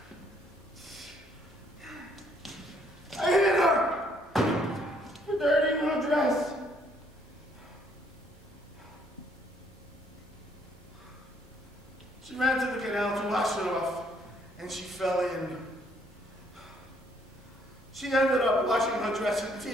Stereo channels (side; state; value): both; normal; correlation 0.67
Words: I hit her for dirtying her dress. She ran to the canal to wash it off, and she fell in. She ended up washing her dress in